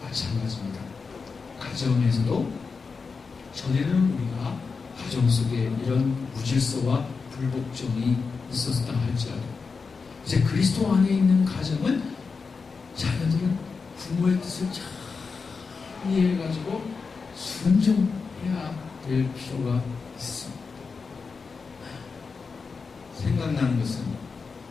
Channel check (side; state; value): right; quieter; 4.9 dB